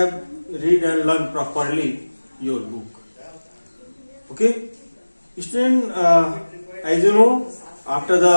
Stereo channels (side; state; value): both; inverted; correlation -1.00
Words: read and learned properly your book. Okay. Student, as you know, after